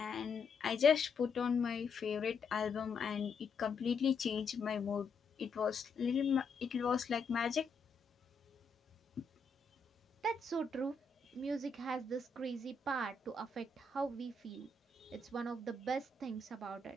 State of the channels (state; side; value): quieter; right; 4.0 dB